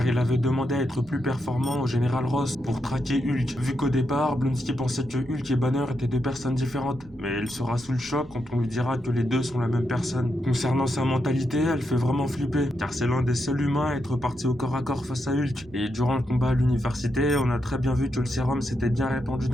il avait demandé à être plus performant au général Ross pour traquer Hulk. Vu qu'au départ, Blonsky pensait que Hulk et Banner étaient deux personnes différentes, mais il sera sous le choc quand on lui dira que les deux sont la même personne. Concernant sa mentalité, elle fait vraiment flipper, car c'est l'un des seuls humains à être parti au corps à corps face à Hulk. Et durant le combat à l'université, on a très bien vu que le sérum s'était bien répandu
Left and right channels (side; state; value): right; noise; rumble, 22 dB below the sound